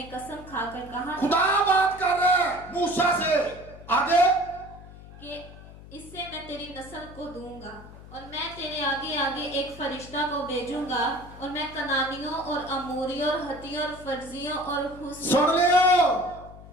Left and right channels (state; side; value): noise; left; hum, 17 dB below the sound